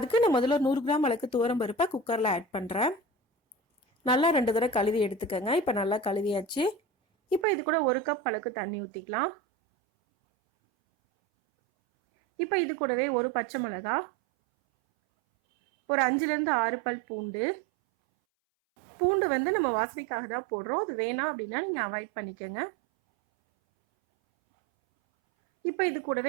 நான் முதல்ல 100 கிராம் அளவுக்கு துவரம் பருப்பை குக்கரில் ஆட் பண்ணுறேன். நல்லா 2 தடவை கழுவி எடுத்துக்கோங்க. இப்போ நல்லா கழுவியாச்சு. இப்போ இது கூட 1 கப் அளவுக்கு தண்ணி ஊற்றிக்கலாம். இப்போ இது கூடவே ஒரு பச்சை மிளகா, ஒரு 5லேருந்து 6 பல் பூண்டு. பூண்டு வந்து நம்ம வாசனைக்காக தான் போடுறோம், அது வேணாம் அப்படின்னா நீங்கள் அவாய்ட் பண்ணிக்கோங்க. இப்போ இது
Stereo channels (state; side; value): drops out; left; at 7.5 s